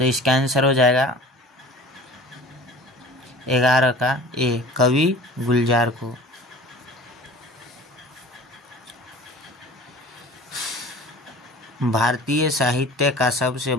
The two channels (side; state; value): both; normal; correlation 0.42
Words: इसका आंसर हो जाएगा 11 का ए, कवि गुलजार को। भारतीय साहित्य का सबसे